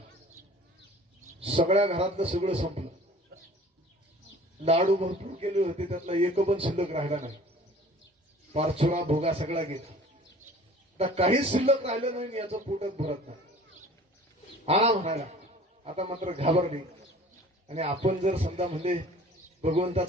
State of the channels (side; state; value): both; normal; correlation 0.47